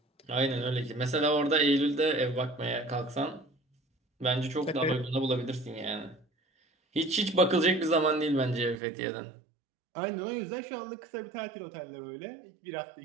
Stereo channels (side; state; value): left; drops out; at 8.8 s